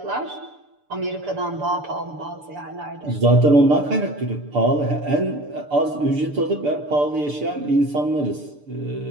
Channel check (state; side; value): late; left; 6.8 ms